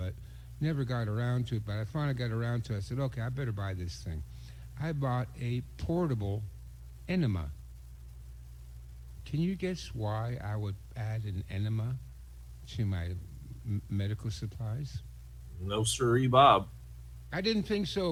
never got around to it, but I finally got around to it. I said, okay, I better buy this thing. I bought a portable enema. Can you guess why I would add an enema to my medical supplies? No siree, Bob. I didn't think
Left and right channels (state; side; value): identical; both; correlation 1.00